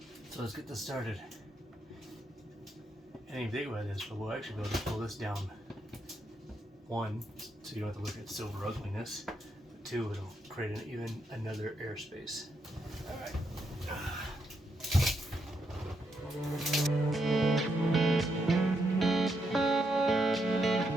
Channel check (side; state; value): both; normal; correlation 0.80